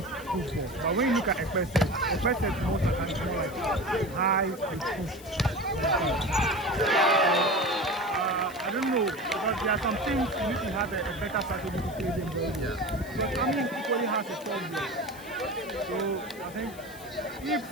push ball. But when you look at Ekpese most of the time it's more like high and push. I don't know, because there are some things you need to have a better strategy to play them very well. But I mean, equally has a strong block. So I think if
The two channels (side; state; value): left; noise; hiss, 19 dB below the sound